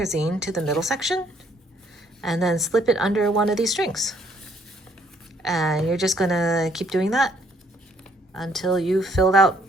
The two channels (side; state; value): both; normal; correlation 0.66